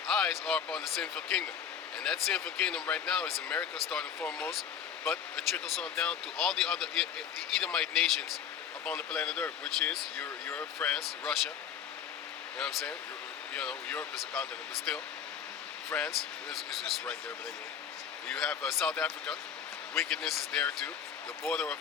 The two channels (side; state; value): right; quieter; 8.2 dB